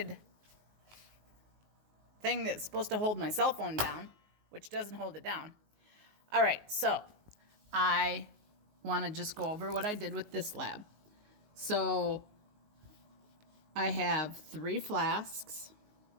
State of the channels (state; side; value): late; left; 19 ms